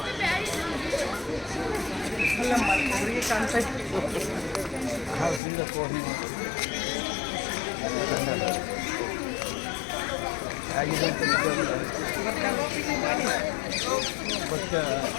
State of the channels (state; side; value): drops out; right; at 5.4 s